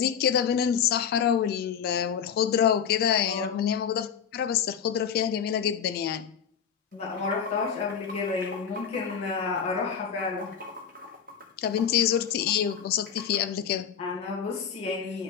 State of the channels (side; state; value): right; quieter; 7.7 dB